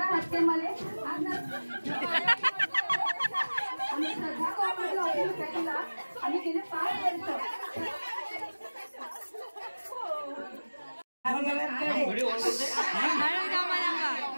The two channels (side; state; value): both; inverted; correlation -1.00